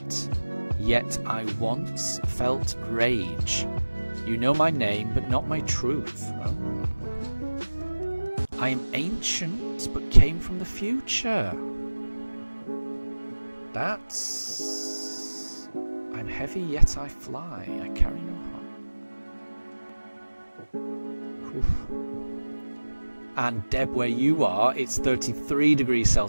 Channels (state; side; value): inverted; both; correlation -1.00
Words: yet I once felt rage. You know my name, but not my truth. Oh. I am ancient, but came from the future. That's... I'm heavy, yet I fly. I carry no heart. Oof. And Deb, where you are, it's 33 degrees